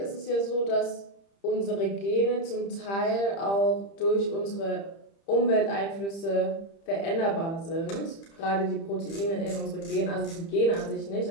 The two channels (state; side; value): late; right; 30 ms